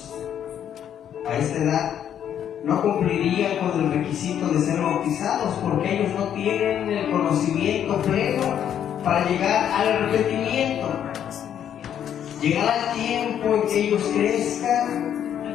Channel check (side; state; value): right; quieter; 9.6 dB